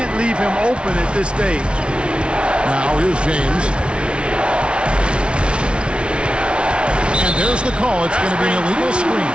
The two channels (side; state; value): left; late; 0.058 ms